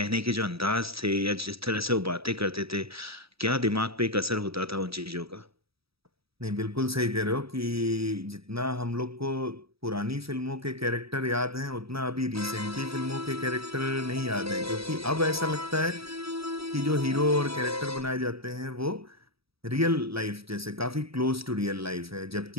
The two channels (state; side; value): late; left; 0.77 ms